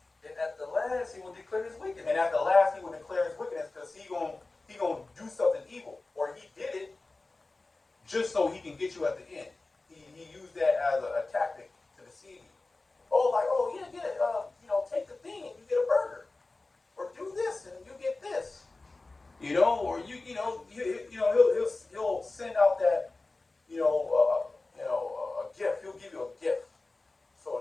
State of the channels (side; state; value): right; quieter; 3.3 dB